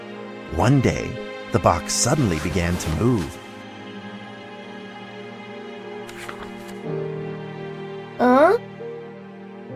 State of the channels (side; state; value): both; identical; correlation 1.00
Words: One day, the box suddenly began to move. Huh?